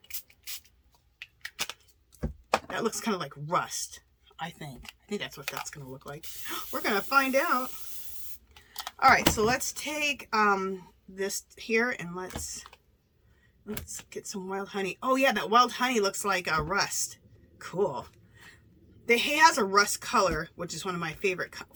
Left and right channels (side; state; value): both; identical; correlation 1.00